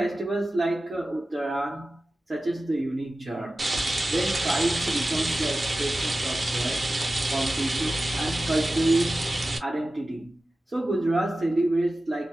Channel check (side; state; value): both; normal; correlation 0.95